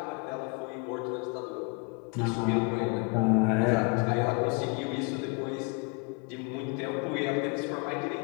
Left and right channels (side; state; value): right; quieter; 32.8 dB